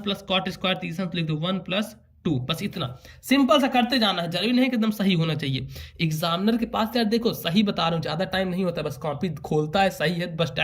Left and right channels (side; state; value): both; identical; correlation 1.00